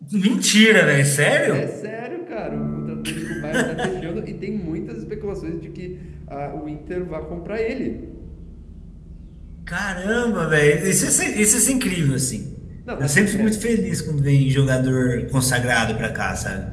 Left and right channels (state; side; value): identical; both; correlation 1.00